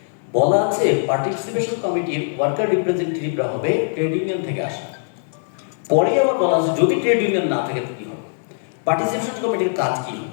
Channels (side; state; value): right; silent; digital silence